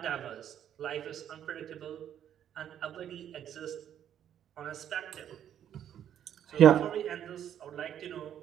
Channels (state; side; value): quieter; left; 10.0 dB